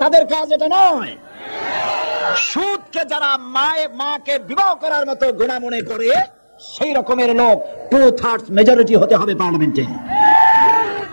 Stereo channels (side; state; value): both; inverted; correlation -1.00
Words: তাদের কাজ এটা নয়। সুদকে যারা মাকে বিবাহ করার মতো গুনাহ মনে করে, সেই রকমের লোক 2/3 মেজরিটি হতে হবে পার্লামেন্টে।